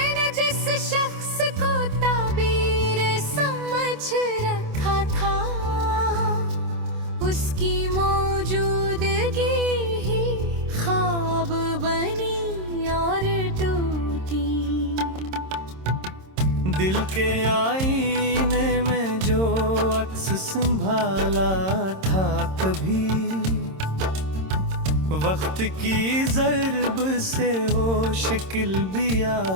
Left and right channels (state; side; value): late; left; 26 ms